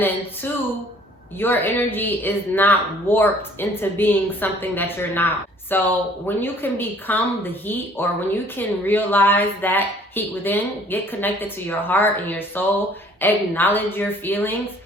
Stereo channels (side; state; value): both; normal; correlation 0.56